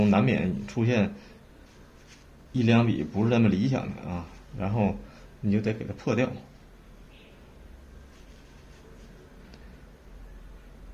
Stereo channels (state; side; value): identical; both; correlation 1.00